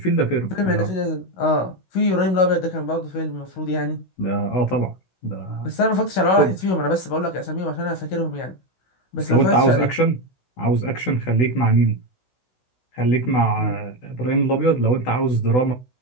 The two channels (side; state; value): right; late; 16 ms